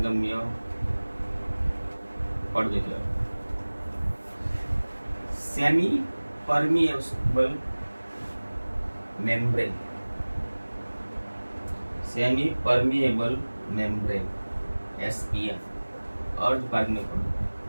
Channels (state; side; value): inverted; both; correlation -1.00